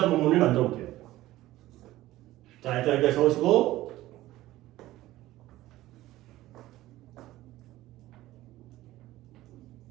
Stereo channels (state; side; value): quieter; left; 16.2 dB